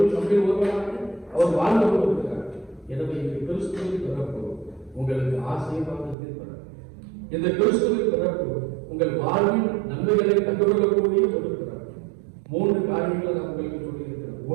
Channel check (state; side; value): drops out; left; at 6.2 s